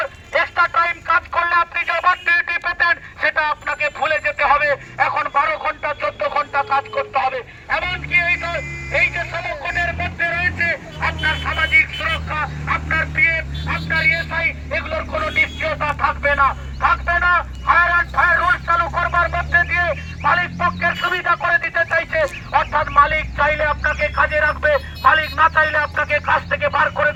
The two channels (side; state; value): both; identical; correlation 1.00